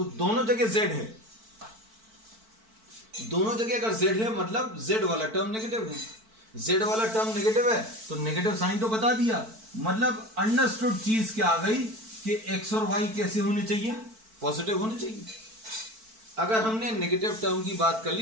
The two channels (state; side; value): late; left; 4.5 ms